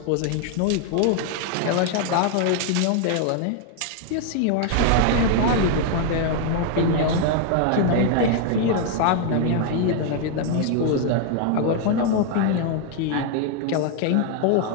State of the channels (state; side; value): different; both; correlation 0.00